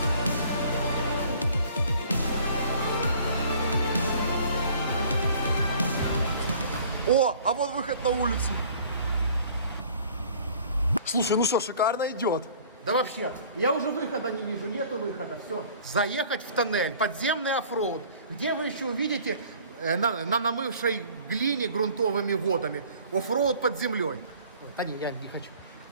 О, а вот выход на улицу. Слушай, ну что, шикарно идет. Да вообще, я уже выхода не вижу, нету выхода, все. Заехать в тоннель, подземный оффроуд, где вы еще увидите на намывшей глине грунтовыми водами оффроуд под землей. Да не, я не хочу.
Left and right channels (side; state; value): both; inverted; correlation -0.51